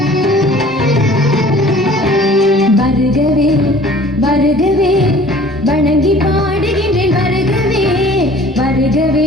வருகவே வருகவே வணங்கி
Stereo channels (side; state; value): both; normal; correlation 0.50